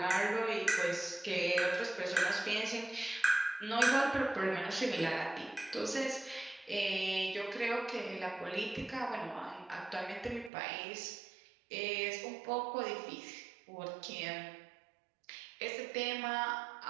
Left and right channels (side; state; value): left; drops out; at 10.5 s